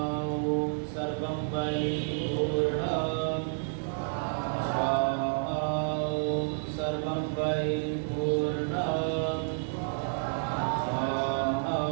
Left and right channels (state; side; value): silent; left; 58 dB below the other